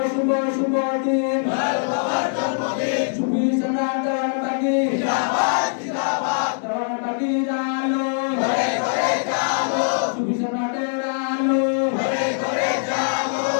শুভ শুভ দিন দয়াল বাবার জন্মদিন সুফি সম্রাট দেওয়ান বাগি জিন্দাবাদ জিন্দাবাদ দেওয়ান বাগি আলো ঘরে ঘরে জালো সুফি সম্রাটের আলো ঘরে ঘরে জালো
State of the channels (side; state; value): right; silent; 64 dB below the other